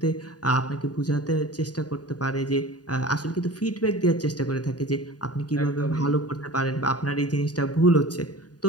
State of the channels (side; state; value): right; late; 0.68 ms